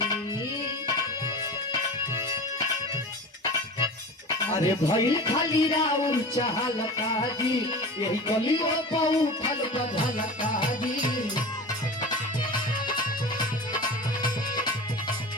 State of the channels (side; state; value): both; normal; correlation 0.33